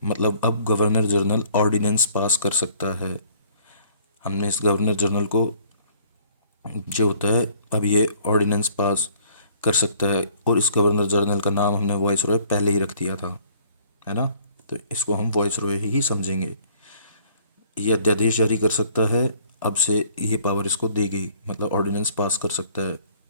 मतलब अब गवर्नर जनरल ऑर्डिनेंस पास कर सकता है। हमने इस गवर्नर जनरल को जो होता है अब ये ऑर्डिनेंस पास कर सकता है, और इस गवर्नर जनरल का नाम हमने वॉइस रॉय पहले ही रख दिया था, है ना, तो इसको हम वॉइस रॉय ही समझेंगे। ये अध्यादेश जारी कर सकता है, अब से ये पावर इसको दी गई, मतलब ऑर्डिनेंस पास कर सकता है।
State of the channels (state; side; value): inverted; both; correlation -0.58